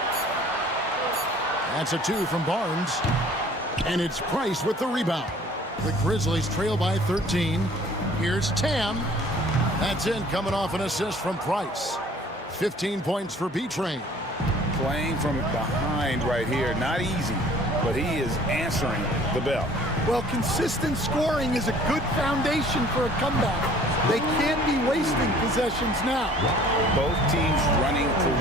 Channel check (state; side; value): normal; both; correlation 0.52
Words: That's a 2 from Barnes. And it's Price with the rebound. The Grizzlies trail by 13. Here's Tam. That's in, coming off an assist from Price. 15 points for B-Train. Playing from behind right here. Not easy, but he is answering the bell. Well, consistent scoring is a good foundation for a comeback. They can't be wasting possessions now. Both teams running